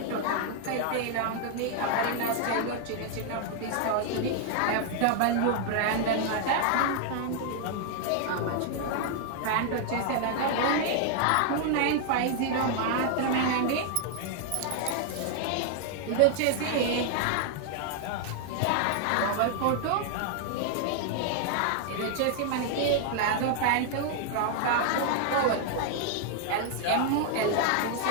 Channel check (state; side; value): different; both; correlation 0.00